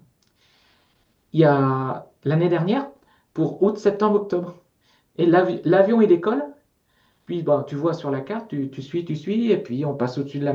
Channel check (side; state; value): both; identical; correlation 1.00